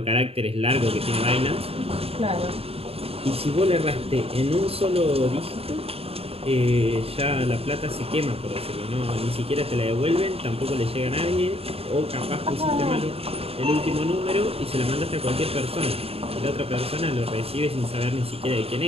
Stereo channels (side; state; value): left; late; 0.28 ms